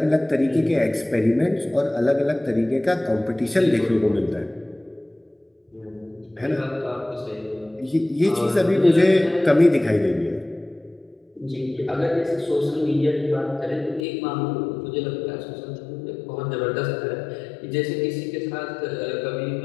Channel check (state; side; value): drops out; right; at 14.0 s